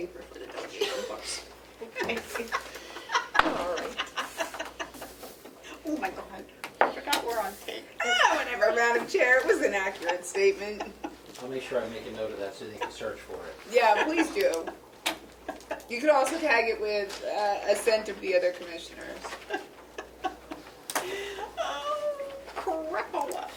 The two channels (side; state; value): both; identical; correlation 1.00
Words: for the delegation books. All right. Oh my God, I forgot we're on tape. Whatever, Madam Chair, it was an accurate statement. I'll make sure I make a note of that so they can search for it. Yeah, please do. You could also tag it with assent of the other commissioners. Crapola.